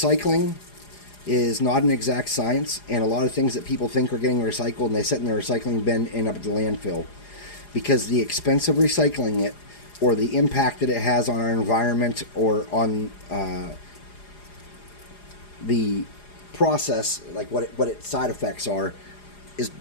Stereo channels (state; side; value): late; right; 4.9 ms